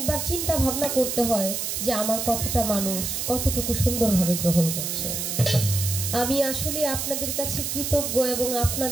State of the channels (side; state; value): right; noise; hiss, 2 dB below the sound